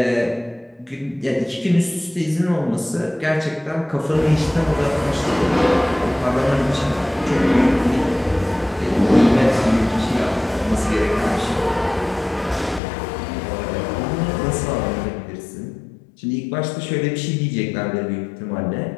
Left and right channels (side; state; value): right; drops out; at 12.8 s